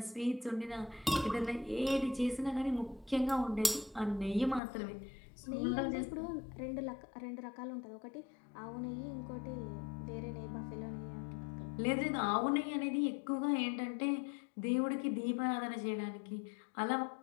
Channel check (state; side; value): drops out; right; at 4.6 s